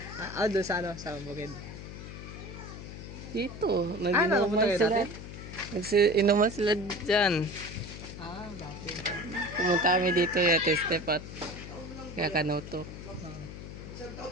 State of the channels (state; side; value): noise; left; hum, 11 dB below the sound